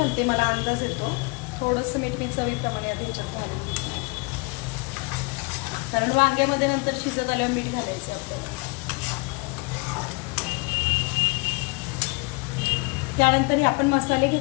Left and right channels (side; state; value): right; quieter; 29.3 dB